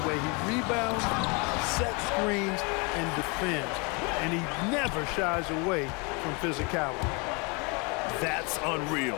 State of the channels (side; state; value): right; quieter; 30.8 dB